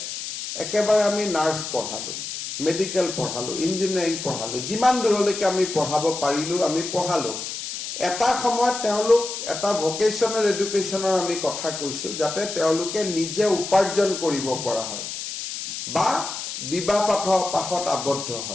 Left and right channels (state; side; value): noise; left; hiss, 7 dB below the sound